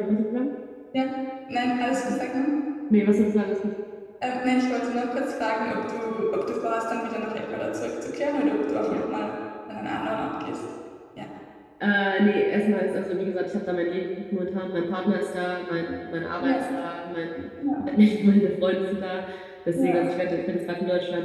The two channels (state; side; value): identical; both; correlation 1.00